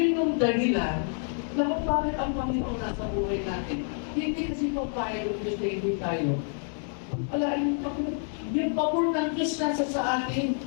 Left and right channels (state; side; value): silent; right; 59 dB below the other